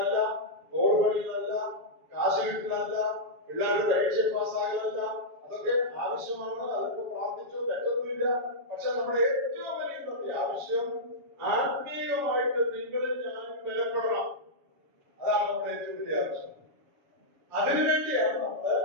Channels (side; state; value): left; late; 7.1 ms